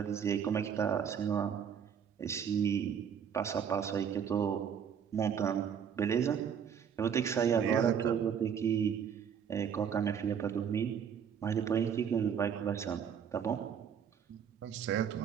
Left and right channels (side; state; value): left; quieter; 7.8 dB